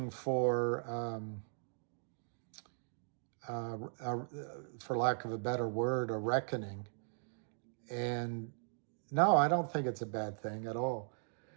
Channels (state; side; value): silent; left; digital silence